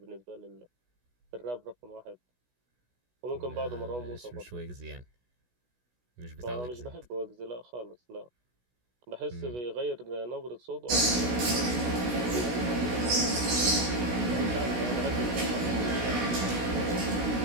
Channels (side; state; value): left; late; 16 ms